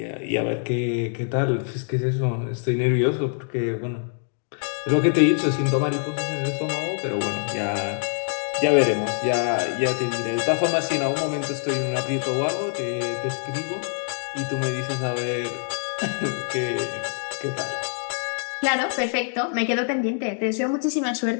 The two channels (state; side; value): silent; right; 62 dB below the other